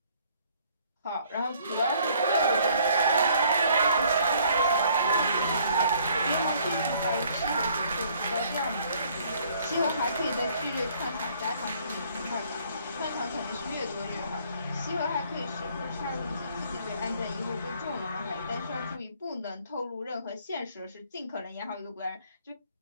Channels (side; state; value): both; inverted; correlation -0.61